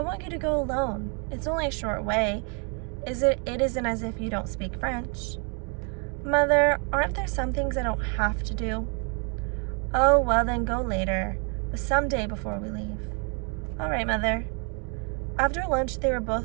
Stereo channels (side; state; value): left; quieter; 37.0 dB